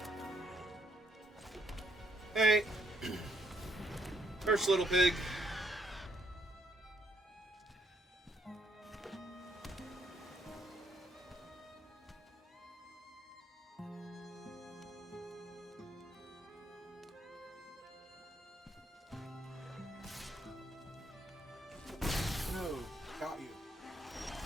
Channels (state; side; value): normal; both; correlation 0.71